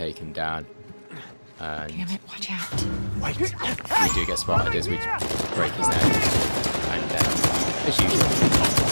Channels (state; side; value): inverted; both; correlation -1.00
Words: him down. And Damn it, watch out. Wait. we do get spotted as we break his neck, and as usual,